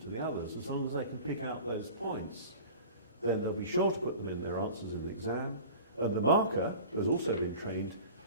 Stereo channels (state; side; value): inverted; both; correlation -0.39